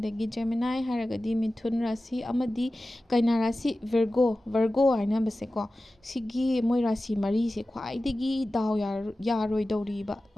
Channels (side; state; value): both; normal; correlation 0.95